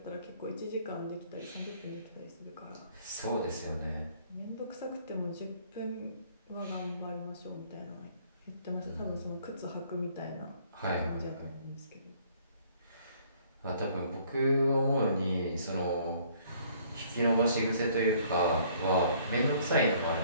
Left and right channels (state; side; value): inverted; both; correlation -0.60